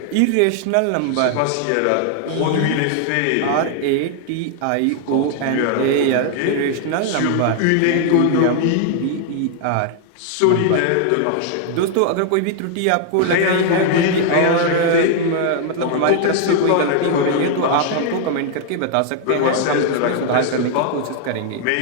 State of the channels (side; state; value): both; different; correlation 0.00